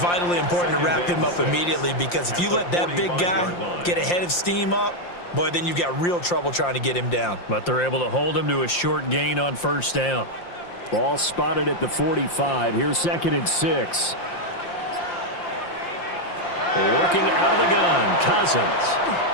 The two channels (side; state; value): right; late; 5.7 ms